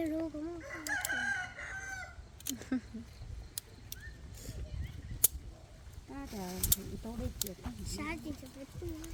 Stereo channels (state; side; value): identical; both; correlation 1.00